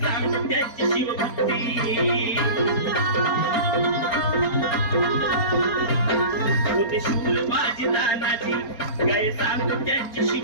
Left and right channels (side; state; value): right; late; 4.4 ms